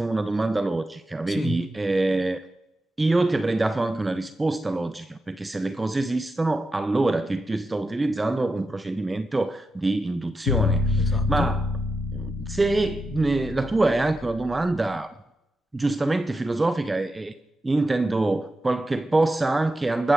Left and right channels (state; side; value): normal; both; correlation 0.90